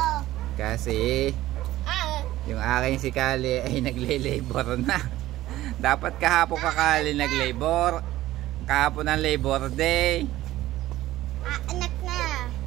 Kasi yung aking si Kali ay nagle-labor na. Dapat kahapon ka Kali nag-labor. Kahapon ang Labor Day. Anak na.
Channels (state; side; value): quieter; left; 15.4 dB